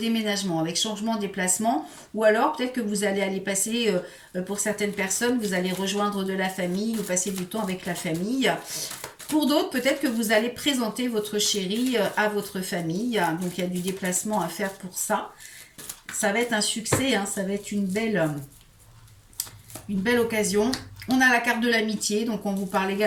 avec changement de déplacement ou alors peut-être que vous allez aller passer, pour certaines personnes, vous allez rejoindre de la famille ou passer du temps avec la famille. Pour d'autres, peut-être que vous allez présenter votre chéri à votre famille. Donc il y a du déplacement à faire pour ça. Ça va être un succès, hein, ça va être une belle occasion. On a la carte de l'amitié, donc on vous parle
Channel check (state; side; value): identical; both; correlation 1.00